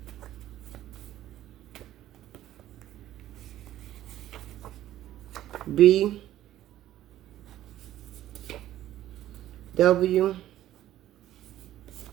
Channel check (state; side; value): quieter; left; 13.2 dB